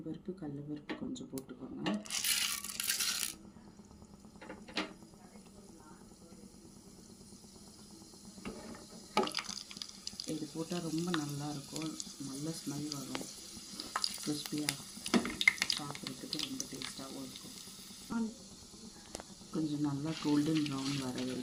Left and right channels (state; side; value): identical; both; correlation 1.00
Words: கடலைப்பருப்பு கொஞ்சம் போட்டுக்கோங்க. இது போட்டால் ரொம்ப நல்லாயிருக்கும், நல்ல ஸ்மெல் வரும், கிறிஸ்பியாக சாப்பிட்றதுக்கு ரொம்ப டேஸ்ட்டாகவும் இருக்கும். கொஞ்சம் நல்லா கோல்டன் ப்ரௌன் வர